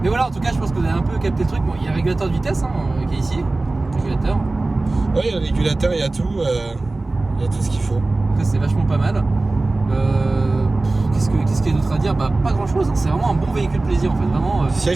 Mais voilà, en tout cas, je pense que vous avez un peu capté le truc. Bon, il y a un régulateur de vitesse qui est ici. Régulateur. Oui, il y a le régulateur, il y a tout. Il y a tout ce qu'il faut. Ça, c'est vachement pas mal. Qu'est-ce qu'il y a d'autre à dire? Bah, pas grand chose, hein. C'est vraiment un bon véhicule plaisir en fait. Vraiment,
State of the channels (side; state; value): left; quieter; 3.1 dB